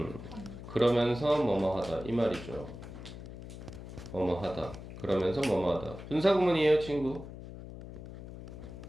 그러면서 뭐뭐 하다 이 말이죠. 뭐뭐 하다. 그러면서 뭐뭐 하다. 분사구문이에요, 친구.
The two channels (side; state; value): left; noise; hum, 12 dB below the sound